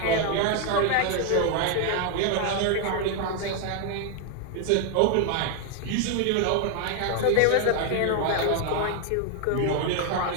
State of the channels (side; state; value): both; different; correlation 0.01